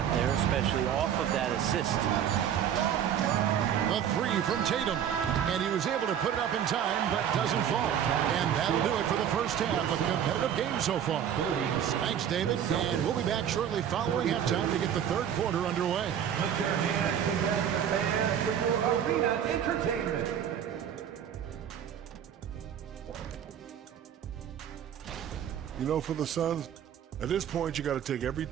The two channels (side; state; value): left; quieter; 9.2 dB